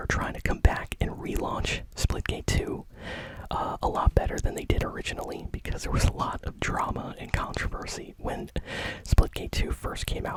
trying to come back and relaunch Splitgate 2. A better than they did originally, because there was a lot of drama and controversy when Splitgate 2 first came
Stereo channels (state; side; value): identical; both; correlation 1.00